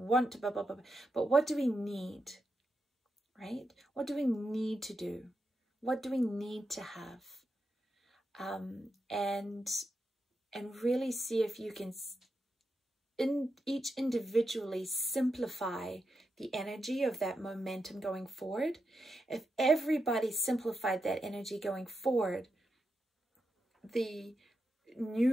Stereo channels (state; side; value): normal; both; correlation 0.87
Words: to blah, blah, blah, but what do we need, right? What do we need to do? What do we need to have? And really see if you can each individually simplify the energy of that momentum going forward. If everybody simplified that energy going forward, the